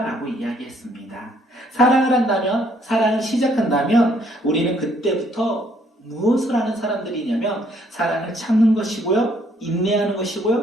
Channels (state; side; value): normal; both; correlation 0.66